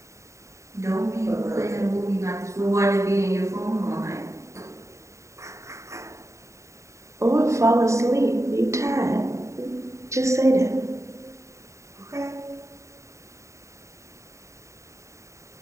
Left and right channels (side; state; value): left; late; 0.14 ms